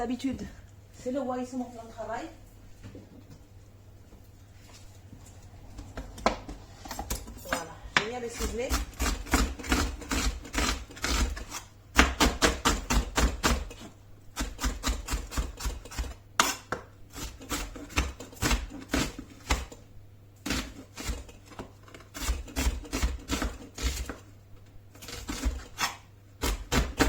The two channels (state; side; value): identical; both; correlation 1.00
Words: c'est le roi, c'est mon plan de travail. Voilà, j'ai mis à le ciseler.